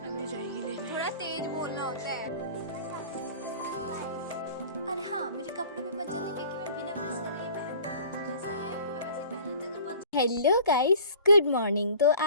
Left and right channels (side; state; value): both; inverted; correlation -0.46